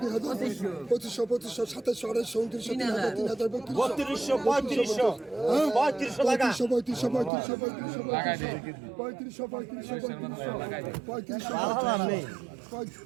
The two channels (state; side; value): drops out; left; at 7.3 s